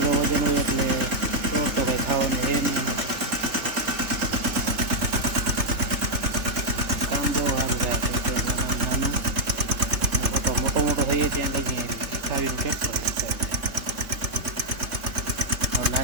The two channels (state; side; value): late; left; 3.3 ms